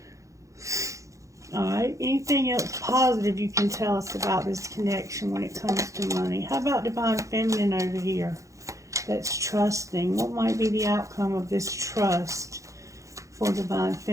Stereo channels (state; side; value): late; left; 0.15 ms